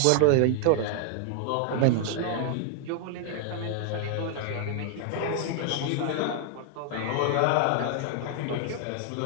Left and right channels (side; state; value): both; different; correlation -0.01